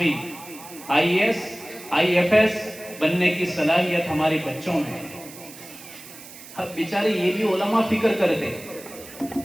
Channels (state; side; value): noise; right; hiss, 17 dB below the sound